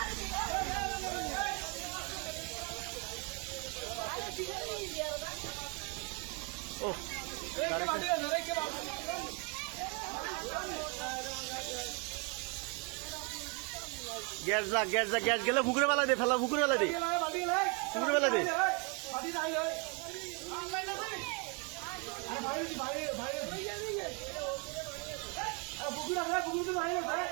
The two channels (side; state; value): left; quieter; 33.4 dB